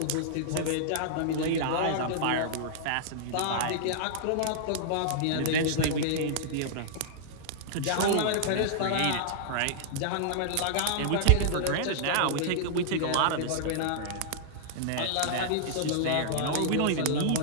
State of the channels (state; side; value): different; both; correlation -0.01